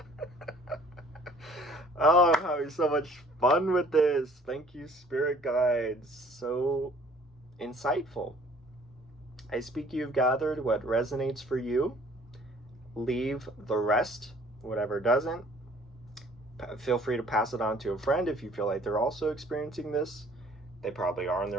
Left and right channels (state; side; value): normal; both; correlation 0.55